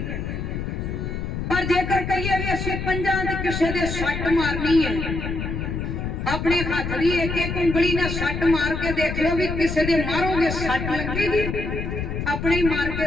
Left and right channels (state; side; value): noise; left; rumble, 4 dB below the sound